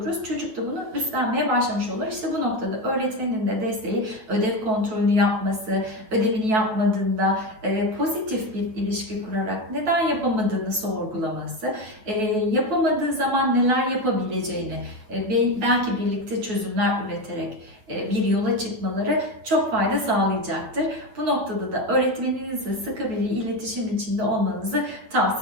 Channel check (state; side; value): late; left; 9.2 ms